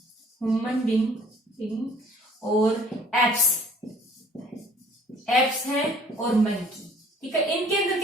ह्यूमन बींग और एप्स हैं और मंकी। ठीक है। इनके अंदर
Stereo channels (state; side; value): normal; both; correlation 0.55